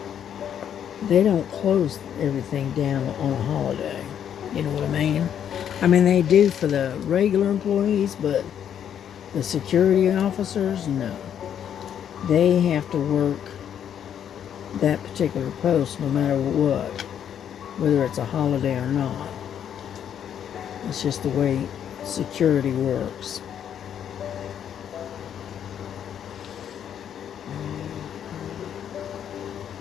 close everything down on a holiday. You know what I mean? I mean, they do for the regular employees, but the security officers, no. They have to work that particular post no matter what, whether it's a holiday or not. It's just the way security works.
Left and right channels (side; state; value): right; quieter; 9.2 dB